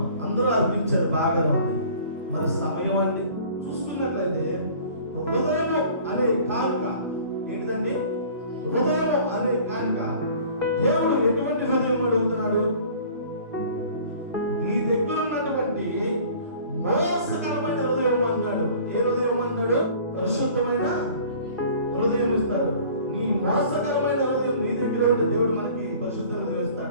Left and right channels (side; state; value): both; inverted; correlation -0.48